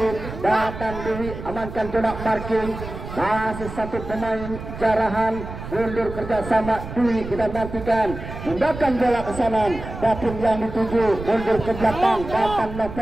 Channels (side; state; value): right; noise; rumble, 10 dB below the sound